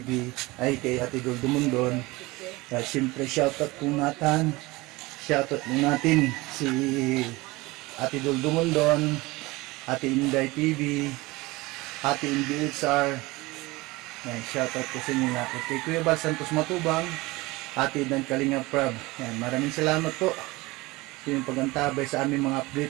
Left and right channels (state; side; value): quieter; left; 21.8 dB